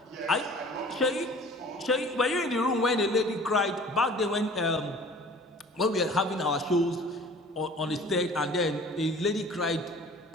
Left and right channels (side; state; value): both; normal; correlation 0.47